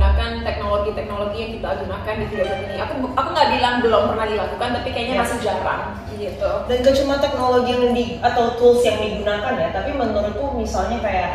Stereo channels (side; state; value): both; identical; correlation 1.00